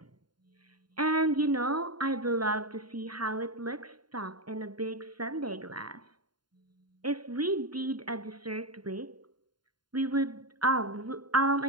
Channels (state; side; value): late; left; 0.71 ms